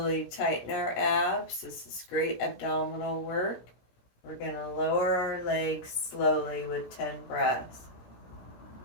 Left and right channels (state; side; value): late; right; 17 ms